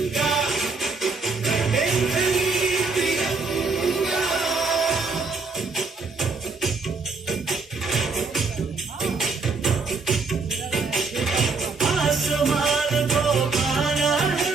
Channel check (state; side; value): quieter; left; 4.2 dB